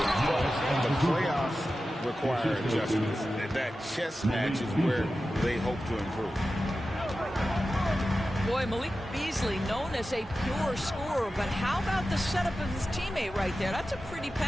but the playoffs require adjustments. That chess match is where they hope to improve. Boy, Malik Beasley, known as a pure scorer, but how about the setup of his teammate right there? That's a pretty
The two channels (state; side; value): normal; both; correlation 0.93